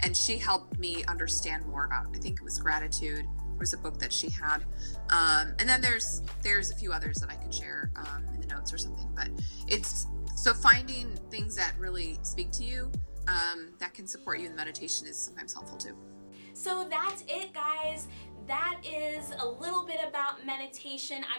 And she helped me understand more about, I think it was gratitude. There was a book that she had. And then there's a few others that I could share in the notes or something. But it's so finding things that really speak to you that can support you in meditation is sometimes helpful too. So that's it, guys. That is a little bit about meditation.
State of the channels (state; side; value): inverted; both; correlation -1.00